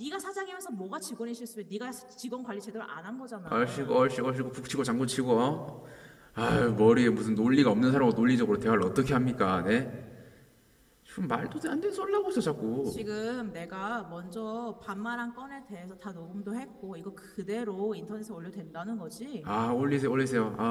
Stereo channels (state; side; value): identical; both; correlation 1.00